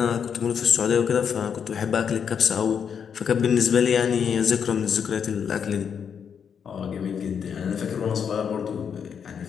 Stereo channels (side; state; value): right; quieter; 7.3 dB